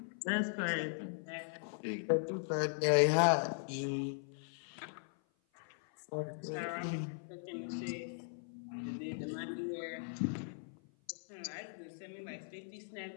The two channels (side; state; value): right; silent; 52 dB below the other